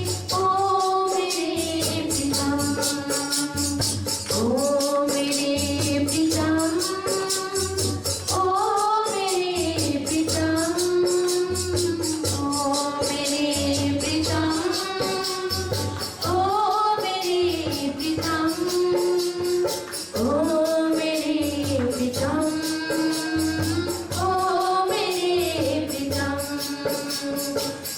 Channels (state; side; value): identical; both; correlation 1.00